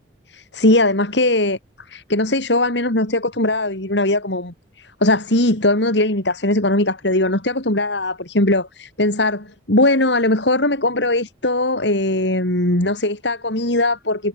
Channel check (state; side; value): normal; both; correlation -0.01